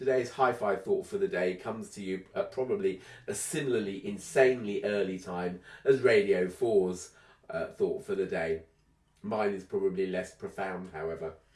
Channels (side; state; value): both; identical; correlation 1.00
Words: hi-fi thought for the day comes to you at probably a similarly insanely early time as Radio 4's thought for the day. Mine is probably less profound, however.